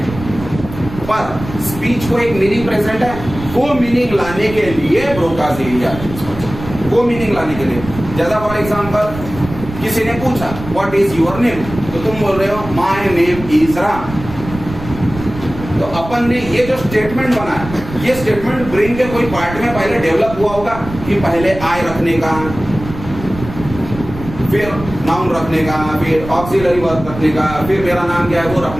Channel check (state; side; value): noise; right; rumble, 11 dB below the sound